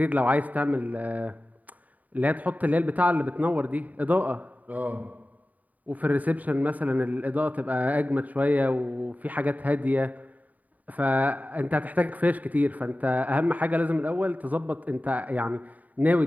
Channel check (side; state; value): left; late; 0.075 ms